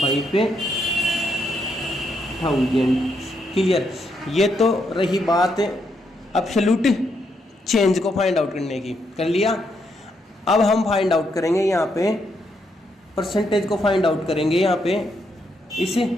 क्लियर, ये तो रही बात एब्सोल्यूट चेंज को फाइंड आउट करने की, कर लिया। अब हम फाइंड आउट करेंगे यहाँ पे परसेंटेज को फाइंड आउट करेंगे। यहाँ पे इस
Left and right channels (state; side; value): normal; both; correlation 0.77